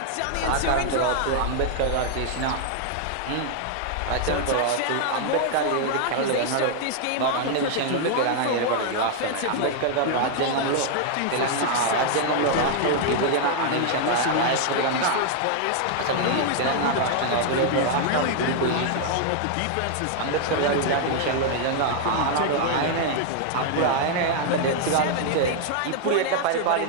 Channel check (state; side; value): different; both; correlation 0.00